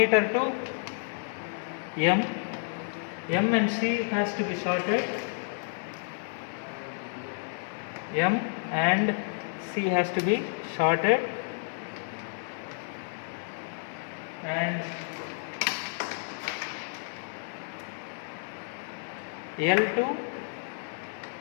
to M. M and C has to be shorted. M and C has to be shorted, and L2,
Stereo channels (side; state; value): right; silent; 57 dB below the other